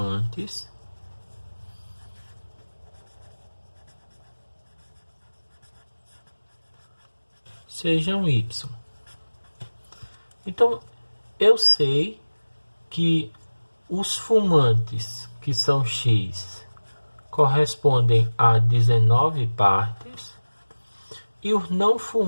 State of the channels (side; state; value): both; inverted; correlation -1.00